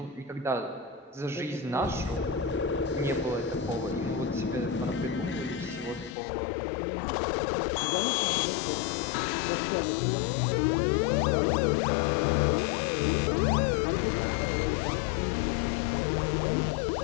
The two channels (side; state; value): right; drops out; at 6.2 s